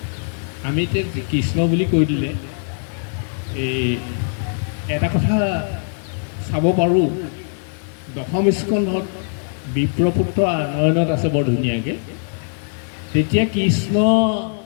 আমি এতিয়া কৃষ্ণ বুলি কৈ দিলে এই এটা কথা চাব পাৰোঁ, দশম স্কন্ধত বিপ্ৰপুত্ৰ আনয়নত আছে বৰ ধুনীয়াকৈ। তেতিয়া কৃষ্ণ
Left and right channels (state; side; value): silent; right; digital silence